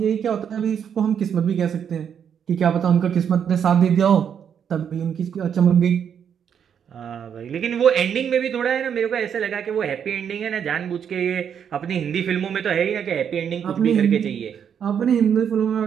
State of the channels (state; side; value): quieter; left; 8.1 dB